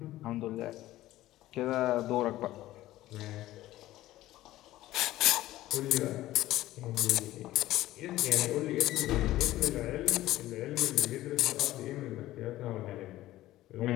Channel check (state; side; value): quieter; right; 15.6 dB